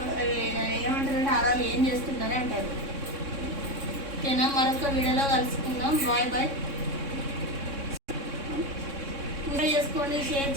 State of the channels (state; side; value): late; left; 3.6 ms